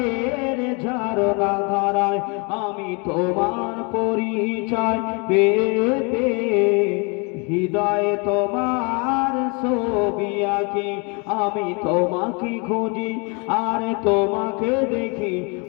ঝরনা ধারায়, আমি তোমার পরিচয় পেয়ে পেয়ে হৃদয়ে তোমার ছবি আঁকি। আমি তোমাকে খুঁজি আর তোমাকে দেখি,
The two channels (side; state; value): right; quieter; 32.2 dB